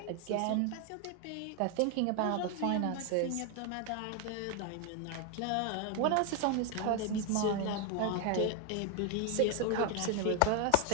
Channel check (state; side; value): different; both; correlation 0.01